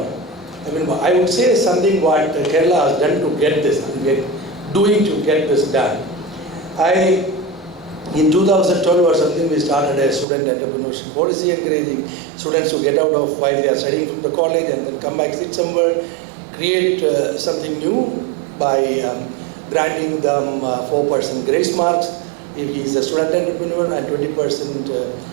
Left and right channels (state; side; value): drops out; left; at 10.2 s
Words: I mean, I would say something what Kerala has done to get this, doing to get this done. In 2012 or something, we started a student entrepreneurship policy, encouraging students to get out of while they are studying from the college and then come back, sit somewhere, create something new by granting them 4% grace marks if he is a student entrepreneur and